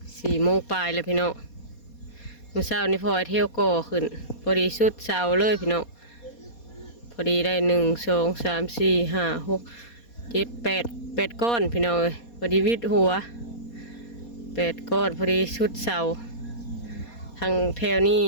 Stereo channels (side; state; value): right; late; 4.2 ms